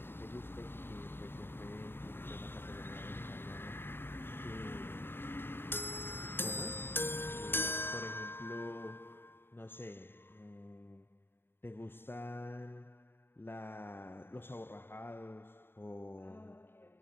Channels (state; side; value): late; right; 0.11 ms